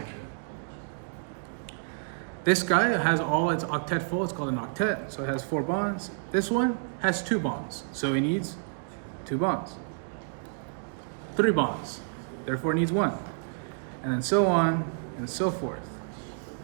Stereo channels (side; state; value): left; silent; digital silence